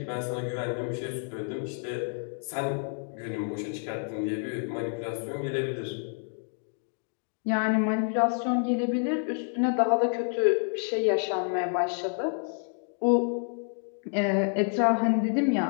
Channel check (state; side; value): silent; right; 59 dB below the other